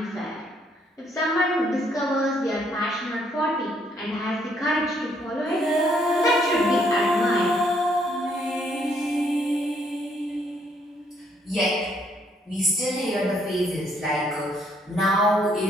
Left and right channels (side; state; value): both; normal; correlation 0.69